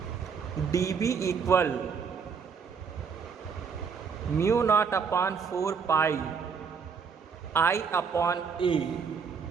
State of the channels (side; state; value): left; quieter; 6.0 dB